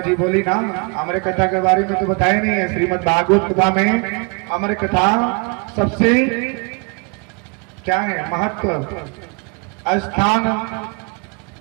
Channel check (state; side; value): quieter; left; 32.8 dB